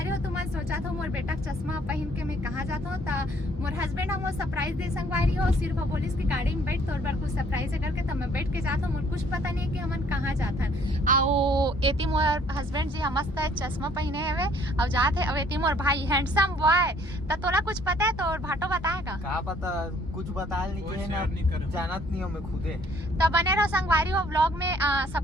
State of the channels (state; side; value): normal; both; correlation 0.60